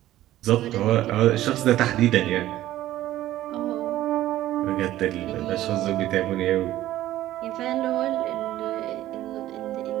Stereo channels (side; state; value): left; quieter; 14.3 dB